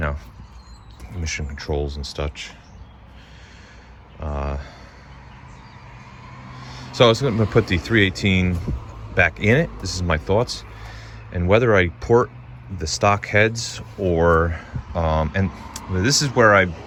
emission controls and such. So I was going to put the 318 back in it. This is my thoughts. And whether I port the stock heads or, and this is where I'm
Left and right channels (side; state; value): both; identical; correlation 1.00